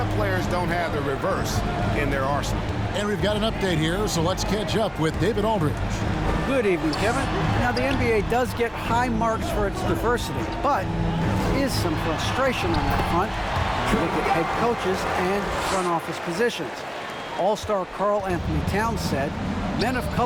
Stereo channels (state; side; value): identical; both; correlation 1.00